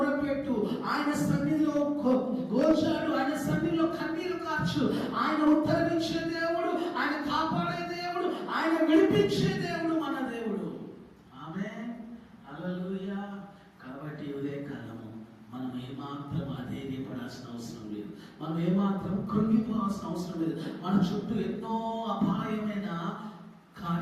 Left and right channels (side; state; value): both; identical; correlation 1.00